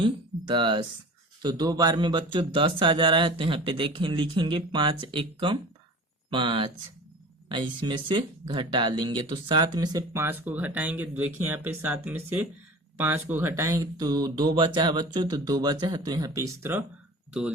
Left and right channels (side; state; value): both; normal; correlation 0.38